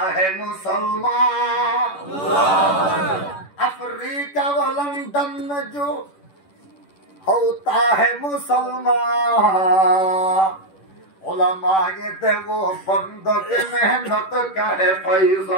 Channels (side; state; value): right; late; 10 ms